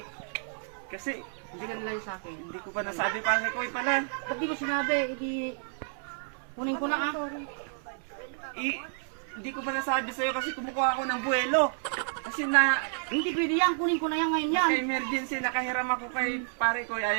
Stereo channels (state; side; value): silent; left; 58 dB below the other